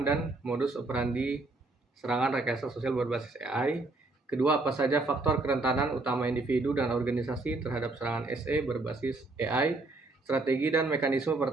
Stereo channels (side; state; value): left; quieter; 3.2 dB